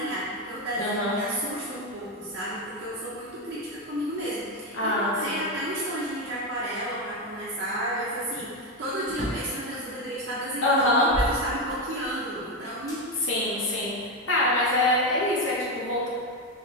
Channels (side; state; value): both; normal; correlation 0.11